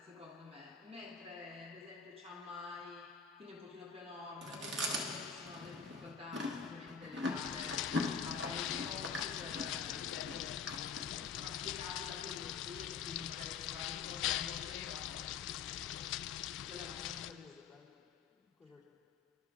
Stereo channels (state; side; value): quieter; right; 5.8 dB